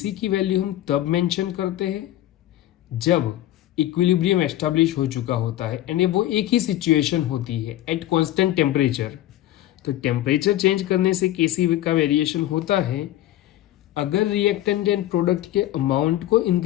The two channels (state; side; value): quieter; right; 13.9 dB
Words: की वैल्यू हम तब मेंशन करते हैं जब इक्विलिब्रियम एस्टैब्लिश हो चुका होता है, यानी वो एक ही सिचुएशन होती है एट कांस्टेंट टेम्परेचर। तो टेम्परेचर चेंज करने से Kc का वेरिएशन होता है। अगर रिएक्टेंट एंड प्रोडक्ट के अमाउंट को